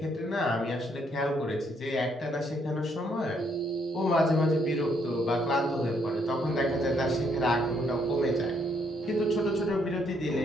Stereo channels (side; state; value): both; normal; correlation 0.71